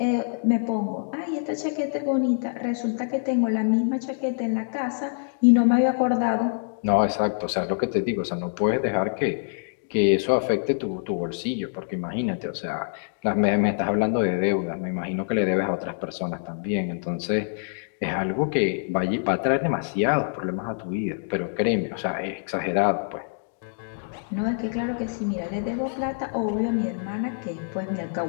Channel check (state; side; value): silent; right; digital silence